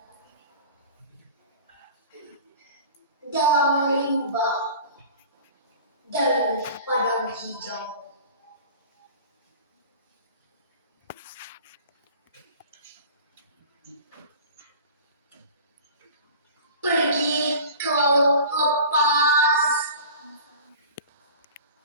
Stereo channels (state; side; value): inverted; both; correlation -0.41